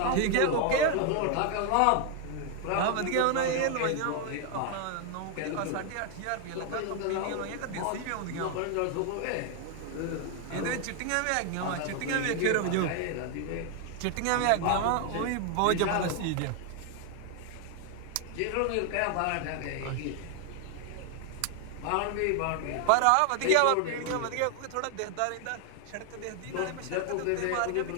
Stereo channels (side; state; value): both; different; correlation 0.00